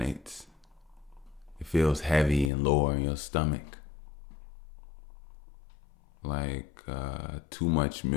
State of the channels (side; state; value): right; drops out; at 2.5 s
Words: it feels heavy and lower in your stomach, like too much